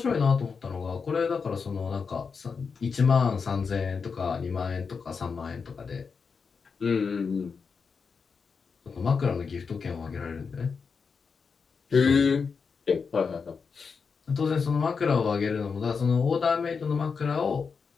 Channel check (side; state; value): right; quieter; 5.5 dB